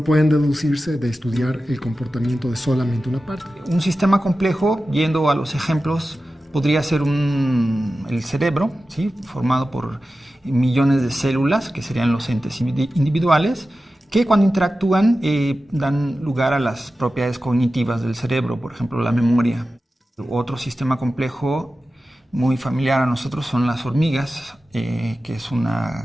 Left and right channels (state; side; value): normal; both; correlation 0.94